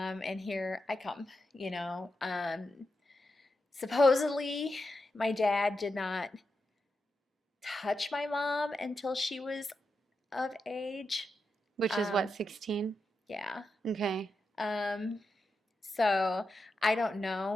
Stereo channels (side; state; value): both; normal; correlation 0.87